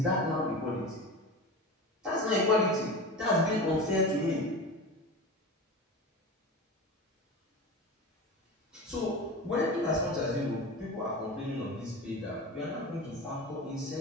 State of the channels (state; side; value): normal; both; correlation 0.29